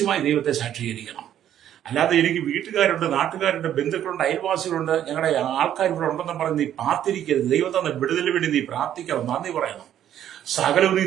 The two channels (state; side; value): quieter; left; 10.8 dB